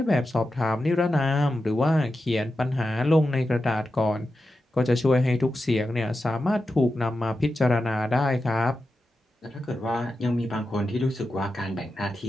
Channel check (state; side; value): normal; both; correlation 0.90